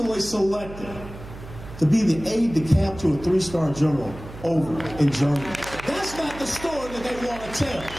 selected to be the aide-de-camp to a 3-star general over in Germany. That's not the story that they want to tell.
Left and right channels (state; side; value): noise; right; hum, 14 dB below the sound